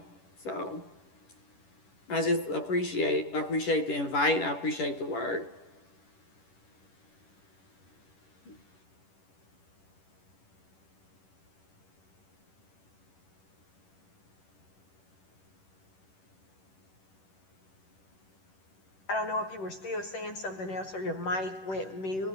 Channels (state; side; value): late; right; 11 ms